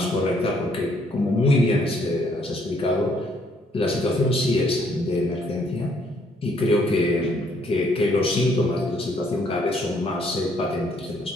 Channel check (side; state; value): both; normal; correlation 0.68